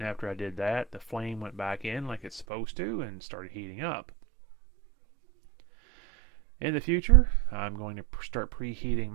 after I did that, the flame went back in like it's supposed to and started heating up. In the future, I'm going to start preheating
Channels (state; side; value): drops out; left; at 2.5 s